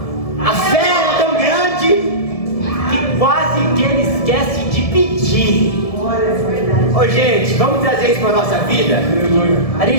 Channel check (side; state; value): right; late; 1.7 ms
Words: fé era tão grande, que quase que ele esquece de pedir. Ô gente, vamos trazer isso para a nossa vida? A